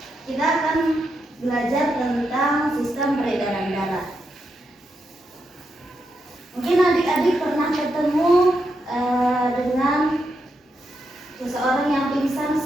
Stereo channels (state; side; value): normal; both; correlation 0.83